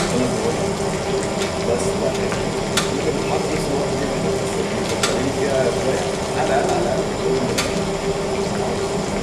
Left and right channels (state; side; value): identical; both; correlation 1.00